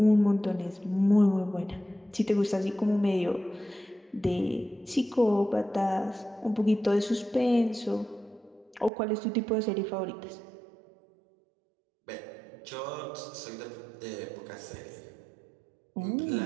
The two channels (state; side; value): drops out; left; at 8.9 s